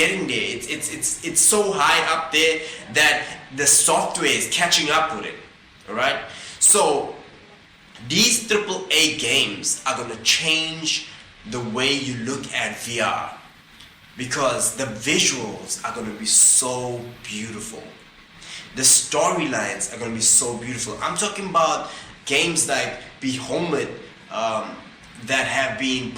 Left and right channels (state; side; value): identical; both; correlation 1.00